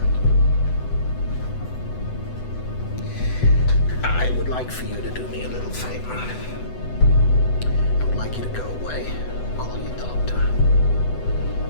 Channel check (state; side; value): late; right; 8.0 ms